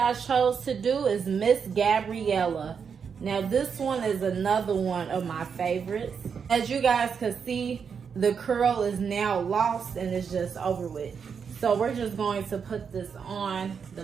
I chose to do is Miss Gabriella. Now this one is another one of my favorites. As you guys can see, the curl is now lost and it's just over with. So we're just going to put this on the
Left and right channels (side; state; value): left; quieter; 6.5 dB